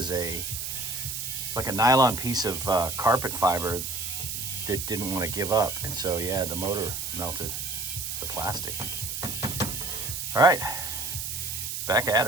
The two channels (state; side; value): noise; right; hiss, 4 dB below the sound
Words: like a nylon piece of carpet fiber that didn't want to give up. And so yeah, the motor melted the plastic. All right, back at